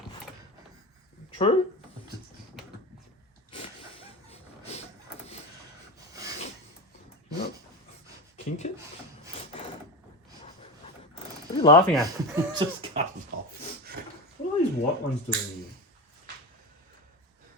True? You know, kink it? What are you laughing at? Just cut it off. What are these white ones doing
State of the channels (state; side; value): normal; both; correlation 0.23